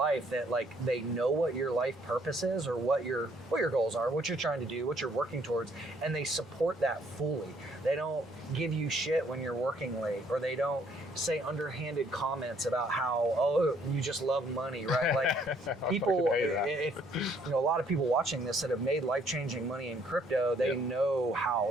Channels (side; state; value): both; normal; correlation 0.65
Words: that like they know what your life purpose is, or what your goals are, what you're trying to do, what you're working towards, and they support that fully. They don't give you shit when you're working late, or they don't say underhanded comments about how, you just love money, right? Like people, if a lot of people watching this that have made life-changing money in crypto, they know